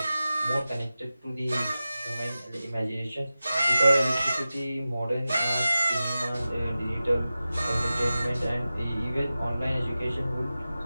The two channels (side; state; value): both; inverted; correlation -0.95